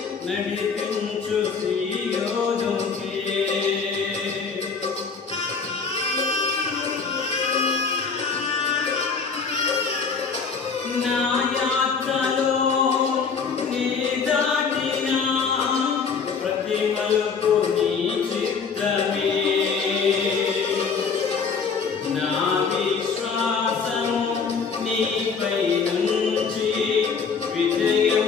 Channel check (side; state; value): right; quieter; 5.5 dB